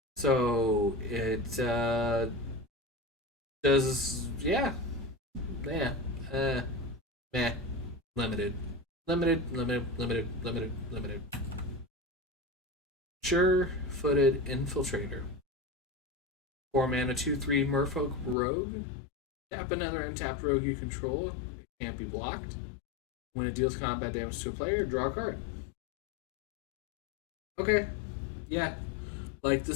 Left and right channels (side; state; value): right; drops out; at 18.4 s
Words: So it does, yeah. Meh. Limited. Sure-footed Infiltrator. 4 mana, 2/3 Merfolk Rogue. Tap another untapped rogue you control. It can't be blocked. When it deals combat damage to a player, draw a card. Okay. Yeah. Like,